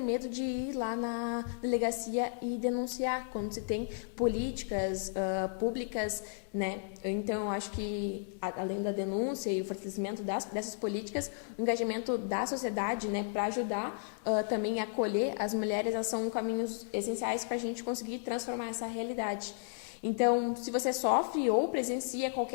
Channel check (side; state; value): right; silent; digital silence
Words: medo de ir lá na delegacia e denunciar quando se tem políticas públicas, né? Então, eu acho que, além da denúncia e o fortalecimento dessas políticas, o engajamento da sociedade, né, para ajudar também a acolher as mulheres, elas são caminhos essenciais para a gente conseguir transformar essa realidade. Então, se você sofre ou presencia